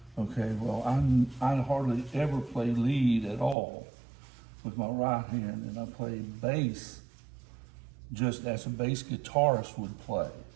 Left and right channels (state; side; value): drops out; left; at 3.6 s